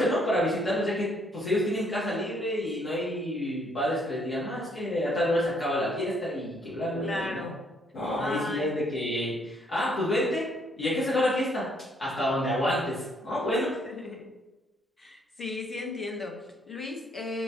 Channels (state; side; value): normal; both; correlation 0.68